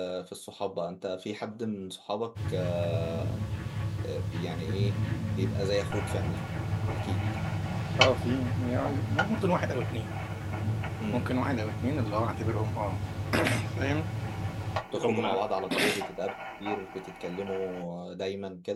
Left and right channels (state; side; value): identical; both; correlation 1.00